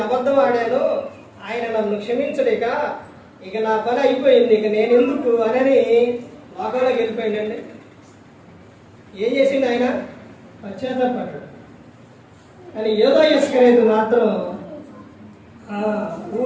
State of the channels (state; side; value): identical; both; correlation 1.00